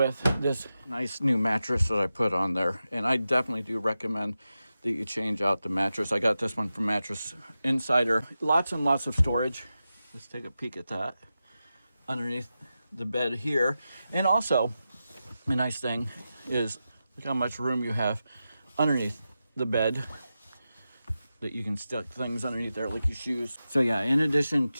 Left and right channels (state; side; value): inverted; both; correlation -0.92